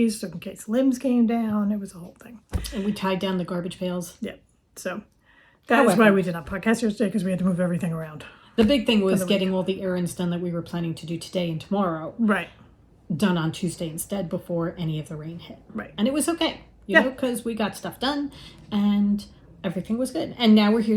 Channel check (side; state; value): both; identical; correlation 1.00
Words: so in case limbs came down. It was a whole thing. And we tied down the garbage pails. Yeah. So that's why we did not podcast yesterday, because we had to move everything around. The big thing was getting all the errands done that we were planning to do today and tomorrow. Right. Done on Tuesday instead before any of the rain hit. Right. And it was okay, because we got stuff done and everything was good. And now we're